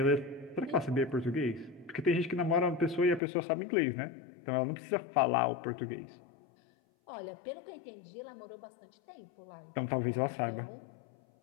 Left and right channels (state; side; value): drops out; right; at 3.2 s